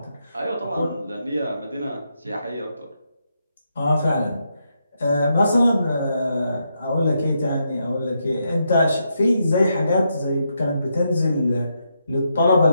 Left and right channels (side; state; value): both; inverted; correlation -0.81